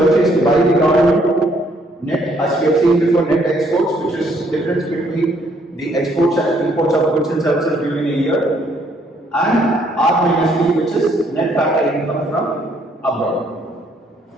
by the government, net, as we have seen before, net exports, which is difference between the exports and imports of goods and services during a year, and R minus P, which is net factor income from abroad.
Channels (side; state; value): both; normal; correlation 0.67